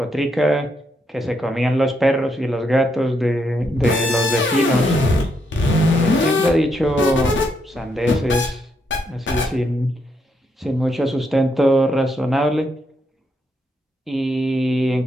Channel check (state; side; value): normal; both; correlation 0.78